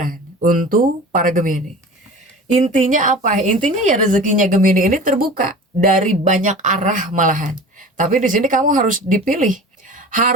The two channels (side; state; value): both; normal; correlation 0.38